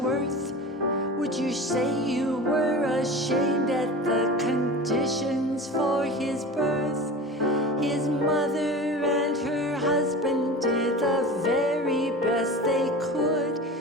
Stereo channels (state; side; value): normal; both; correlation 0.32